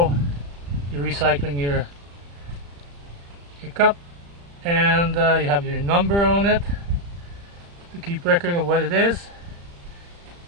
you're recycling your cup, and you have your number on it to keep record of what it is,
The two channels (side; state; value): left; late; 35 ms